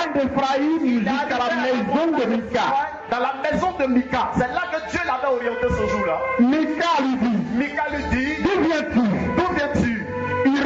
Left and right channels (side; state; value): both; identical; correlation 1.00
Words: d'Ephraïm jusqu'à la maison de Mika. Dans la maison de Mika. C'est là que Dieu l'avait orienté ce jour-là. Mika lui dit, d'où viens-tu?